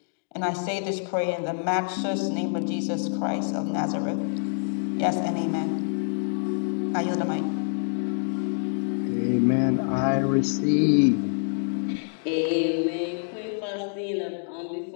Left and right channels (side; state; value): right; silent; digital silence